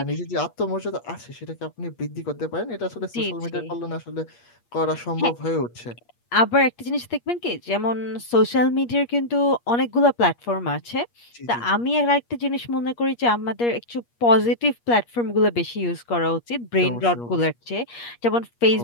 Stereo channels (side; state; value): right; late; 8.4 ms